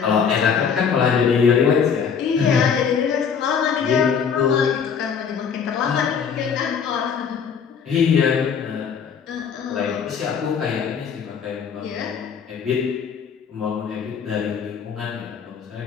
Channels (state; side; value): quieter; right; 6.8 dB